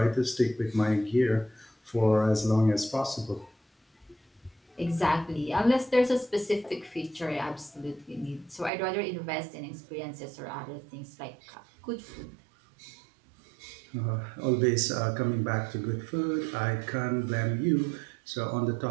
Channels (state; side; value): drops out; left; at 8.7 s